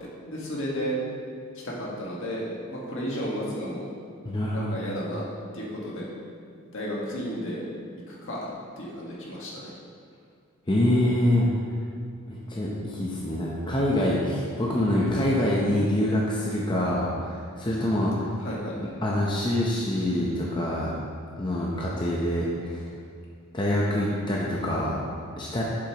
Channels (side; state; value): both; normal; correlation 0.63